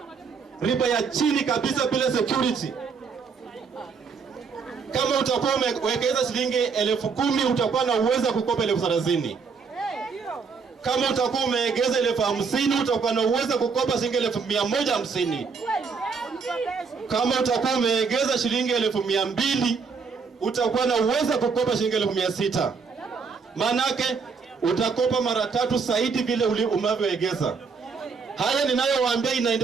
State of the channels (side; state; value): left; quieter; 5.4 dB